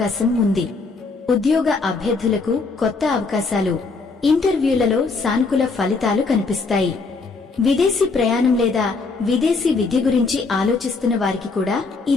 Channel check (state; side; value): quieter; right; 4.1 dB